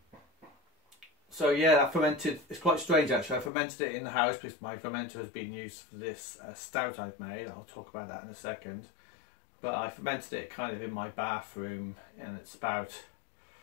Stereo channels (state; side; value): drops out; right; at 3.5 s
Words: So yeah, that fermented. It's quite strange actually. I fermented it in the house because my fermenter has been used for this stout I've made. I'll talk about that in a second. But I fermented it kind of in my bathroom, and it's